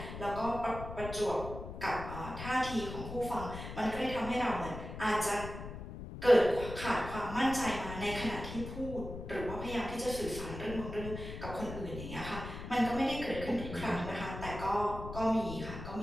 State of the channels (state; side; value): noise; left; rumble, 9 dB below the sound